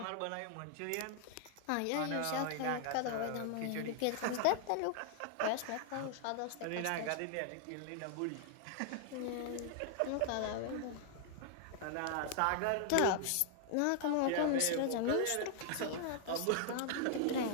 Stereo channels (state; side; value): different; both; correlation 0.00